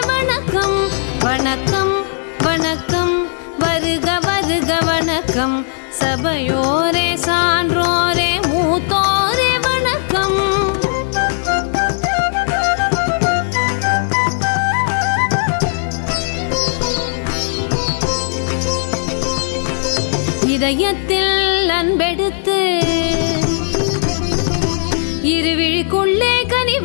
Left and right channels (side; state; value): right; silent; digital silence